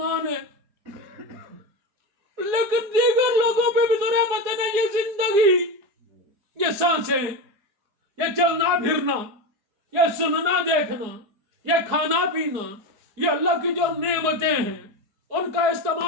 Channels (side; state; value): left; late; 4.8 ms